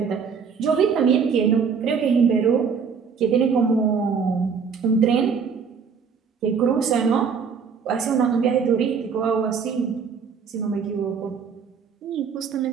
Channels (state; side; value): quieter; left; 6.1 dB